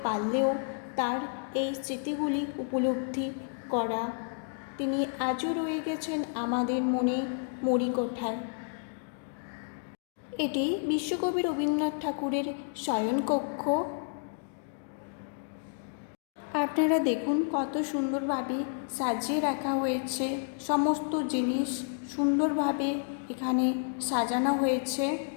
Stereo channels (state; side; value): silent; right; digital silence